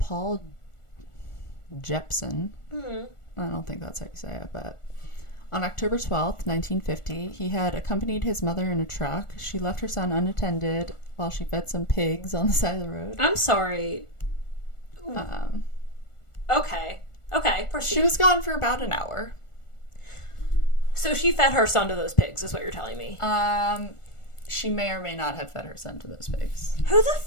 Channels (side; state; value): right; late; 1.4 ms